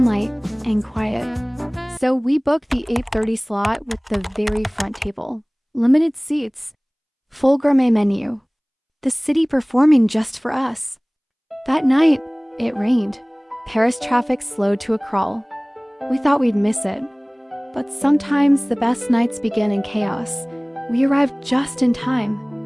and quiet. So we booked the 8:30 slot with the very front table. Limited seats, full gourmet menu. The city performing just for us. That night, it rained. Paris traffic slowed to a crawl. We thought we'd miss it. But sometimes the best nights begin in chaos. We arrived just in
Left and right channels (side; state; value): both; identical; correlation 1.00